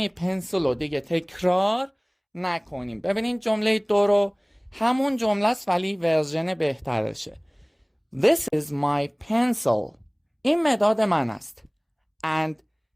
پنسل رو دیگه تکرار نکنیم. ببینین جمله 2 رو همون جمله است ولی ورژن بهترشه. This is my pencil. این مداد من است. And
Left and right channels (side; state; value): both; identical; correlation 1.00